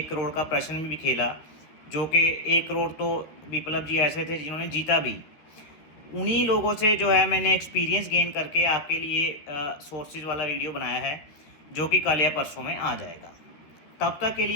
करोड़ का प्रश्न भी खेला, जो कि 1 करोड़ तो विप्लव जी ऐसे थे जिन्होंने जीता भी। उन्हीं लोगों से जो है मैंने एक्सपीरियंस गेन करके आपके लिए सोर्सेज वाला वीडियो बनाया है जो कि कल या परसों में आ जाएगा। तब तक के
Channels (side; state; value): right; late; 13 ms